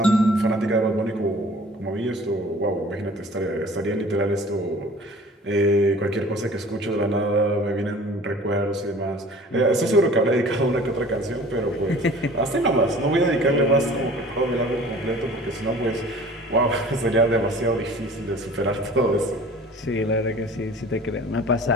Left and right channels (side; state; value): both; normal; correlation 0.46